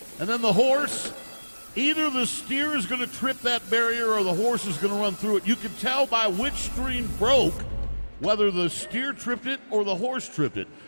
And then the horse. Either the steer is going to trip that barrier or the horse is going to run through it. You can tell by which string broke whether the steer tripped it or the horse tripped it.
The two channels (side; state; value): both; inverted; correlation -1.00